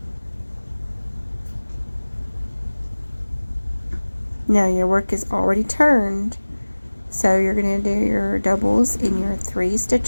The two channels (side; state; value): both; inverted; correlation -1.00